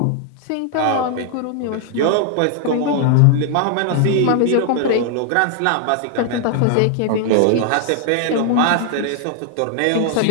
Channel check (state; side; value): different; both; correlation 0.00